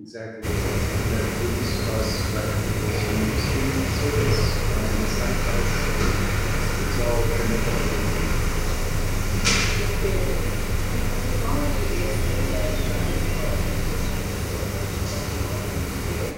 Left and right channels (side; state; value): both; identical; correlation 1.00